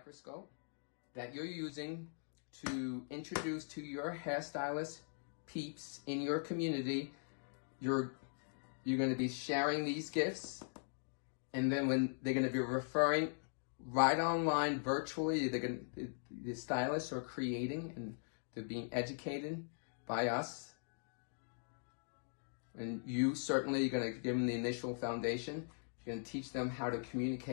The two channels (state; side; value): silent; right; digital silence